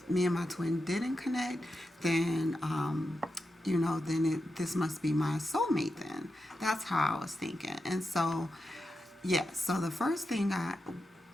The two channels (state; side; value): normal; both; correlation 0.89